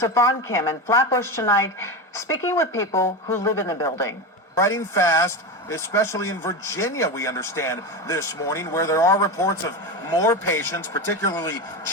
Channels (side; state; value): both; normal; correlation 0.19